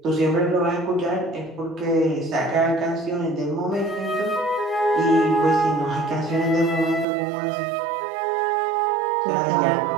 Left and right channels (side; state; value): left; drops out; at 7.1 s